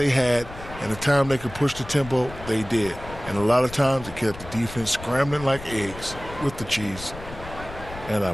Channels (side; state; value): left; noise; rumble, 14 dB below the sound